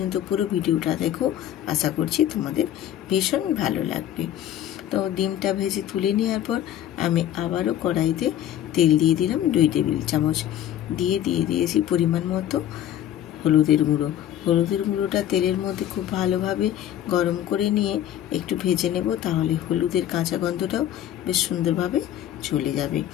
পুরো ভিডিওটা দেখো, আশা করছি তোমাদের ভীষণ ভালো লাগবে। তো ডিমটা ভেজে তুলে নেওয়ার পর আমি আবারও কড়াইতে তেল দিয়ে দিলাম 2 টেবিল চামচ। দিয়ে দিয়েছি পরিমাণ মতো হলুদের গুঁড়োটা তেলের মধ্যে খুব ভালোভাবে গরম করে নিয়ে একটু ভেজে নেব, তাহলে হলুদের কাঁচা গন্ধটাও বেশ সুন্দরভাবে চলে যাবে।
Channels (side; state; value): right; quieter; 11.4 dB